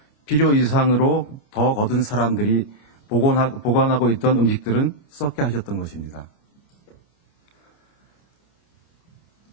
필요 이상으로 더 거둔 사람들이 보관하고 있던 음식들은 썩게 하셨던 것입니다.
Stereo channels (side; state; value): right; late; 29 ms